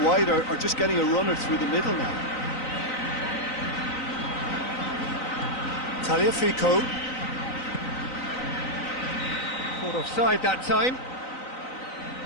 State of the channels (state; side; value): late; right; 3.9 ms